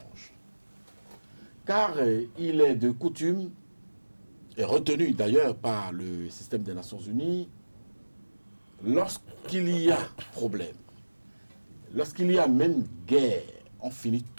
Car il est de coutume, et retenu d'ailleurs par le système des Nations Unies, lorsqu'il y a problème, lorsqu'il y a même guerre, on finit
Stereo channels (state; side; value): inverted; both; correlation -1.00